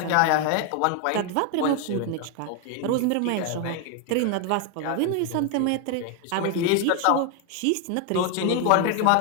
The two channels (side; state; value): both; different; correlation 0.01